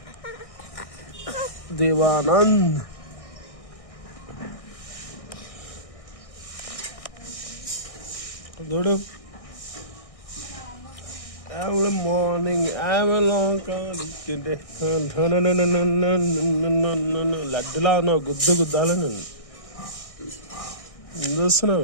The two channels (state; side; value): late; right; 1.6 ms